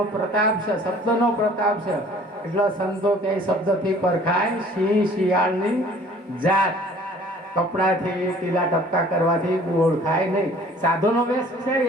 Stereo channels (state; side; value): normal; both; correlation 0.52